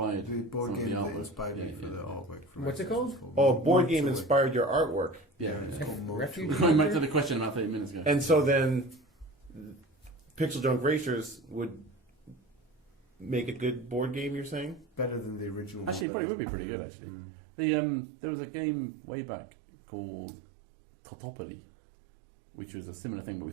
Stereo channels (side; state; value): left; drops out; at 16.1 s